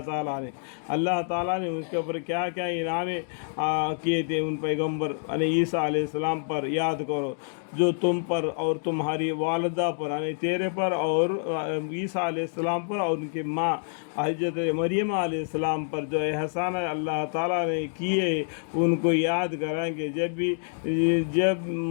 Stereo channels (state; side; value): silent; right; digital silence